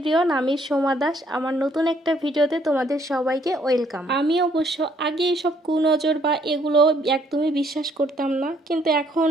আমি সোমা দাস। আমার নতুন একটা ভিডিওতে তোমাদের সবাইকে ওয়েলকাম। আমি অবশ্য আগে এসব কুনজর বা এগুলো একদমই বিশ্বাস করতাম না, কিন্তু এখন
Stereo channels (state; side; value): normal; both; correlation 0.67